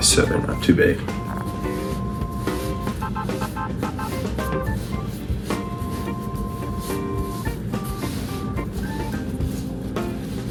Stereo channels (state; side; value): identical; both; correlation 1.00